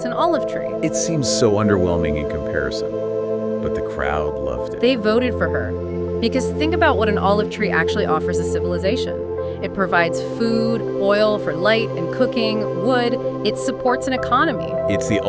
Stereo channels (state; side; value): identical; both; correlation 1.00